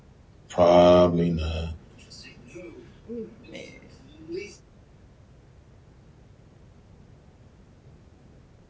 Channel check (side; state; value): both; identical; correlation 1.00